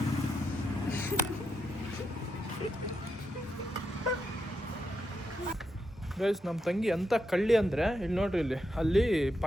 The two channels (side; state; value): both; normal; correlation 0.83